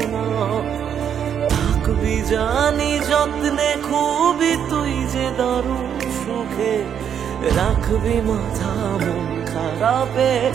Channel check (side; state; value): left; quieter; 8.5 dB